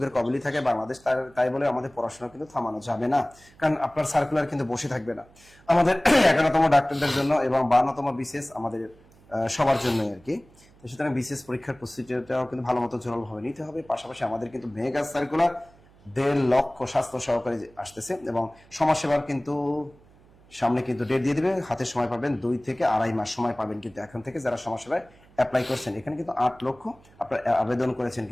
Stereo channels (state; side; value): noise; right; hum, 27 dB below the sound